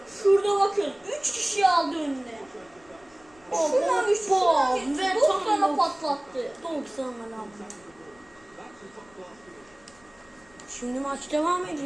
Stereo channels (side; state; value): left; noise; rumble, 29 dB below the sound